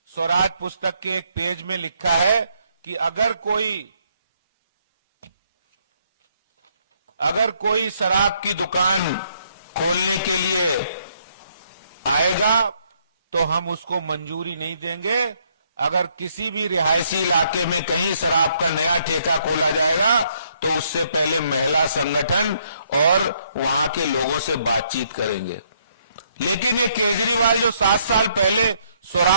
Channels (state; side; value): inverted; both; correlation -0.70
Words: स्वराज पुस्तक के एक पेज में लिखा है कि अगर कोई शराब की दुकान खोलने के लिए आएगा तो हम उसको मंजूरी नहीं देंगे। अगर किसी भी रिहायशी इलाके में कहीं शराब का नया ठेका खोला जाएगा तो उससे पहले महिला संगठन और वहां के लोगों से बातचीत करेंगे। लेकिन ये केजरीवाल जो 7 साल पहले